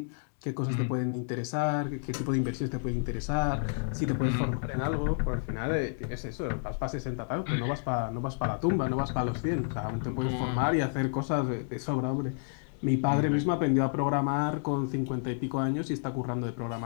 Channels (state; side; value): silent; right; 58 dB below the other